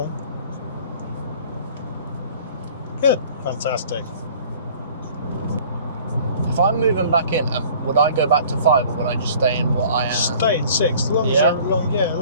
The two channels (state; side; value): inverted; both; correlation -0.50